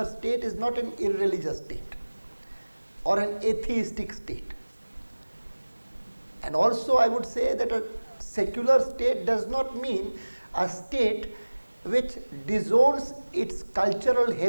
state is not an irreligious state or an atheistic state. And also I would say that a secular state does not mean a state which disowns its cultural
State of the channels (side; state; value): both; inverted; correlation -1.00